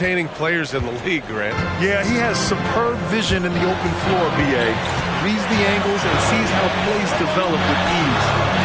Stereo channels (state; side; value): identical; both; correlation 1.00